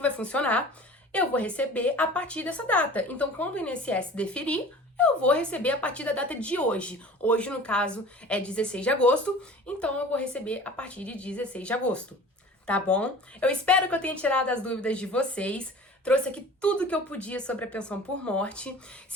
vai funcionar? Eu vou receber a partir dessa data. Então, quando o INSS deferir, eu vou receber a partir da data de hoje. Hoje, no caso, é 16 de agosto, então eu vou receber a partir de 16 de agosto. Tá bom? Eu espero que eu tenha tirado as dúvidas de vocês. Trouxe aqui tudo que eu podia sobre a pensão por morte.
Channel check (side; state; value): both; normal; correlation 0.42